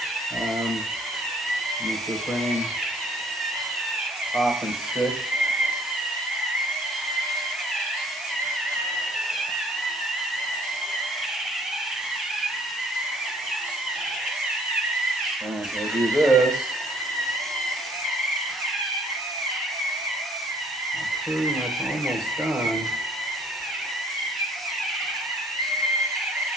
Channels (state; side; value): normal; both; correlation 0.59